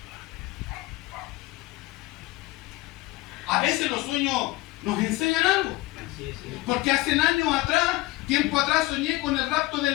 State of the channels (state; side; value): quieter; right; 19.9 dB